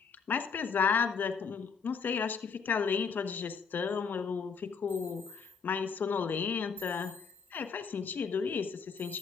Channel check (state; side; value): quieter; right; 5.7 dB